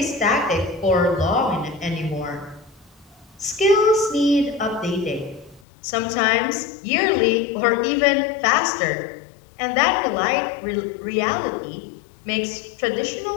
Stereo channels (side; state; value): right; drops out; at 5.7 s